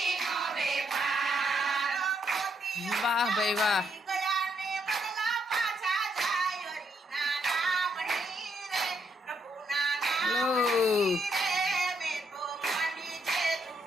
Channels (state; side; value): normal; both; correlation 0.75